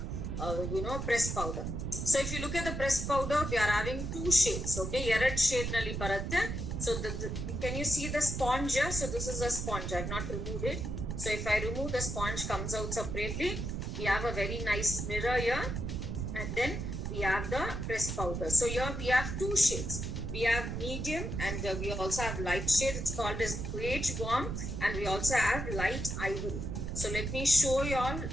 press powder. So if you look at the press powder, we are having two shades. Okay, ಎರಡ್ shade ನಲ್ಲಿ ಬರುತ್ತೆ. So can you see the sponge here? So this is a sponge. I have not removed it. So if I remove, the sponge comes out separately. We have a very nice mirror here, and then we have the press powder. So here we have two shades. We have medium and we also have light shade. It's called as beige warm, and we also have light ivory. So let me show you all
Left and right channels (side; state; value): right; noise; rumble, 4 dB below the sound